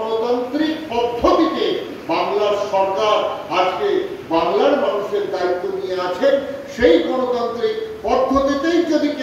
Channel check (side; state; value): both; identical; correlation 1.00